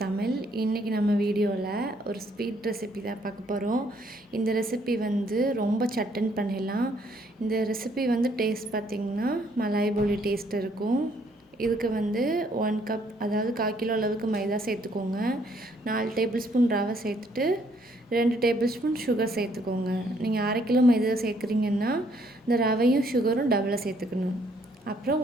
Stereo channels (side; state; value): both; normal; correlation 0.67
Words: Tamil. இன்றைக்கி நம்ம வீடியோவில் ஒரு ஸ்வீட் ரெசிபி தான் பார்க்க போகிறோம். இந்த ரெசிபி ரொம்ப சட்டன் பண்ணிடலாம். இந்த ரெசிபி டேஸ்ட் பார்த்திங்கன்னா மலாய் போலி டேஸ்ட் இருக்கும். இதுக்கு 1 கப், அதாவது 1/4 கிலோ அளவுக்கு மைதா சேர்த்துக்கோங்க. 4 டேபிள் ஸ்பூன் ரவை சேர்த்துட்டு 2 டேபிள் ஸ்பூன் சுகர் சேர்த்துக்கோங்க. நீங்கள் 1/2 கிலோ மைதா சேர்க்குறீங்கன்னா இந்த ரவையும் சுகரும் டபுளாக சேர்த்துக்கணும். அப்புறம்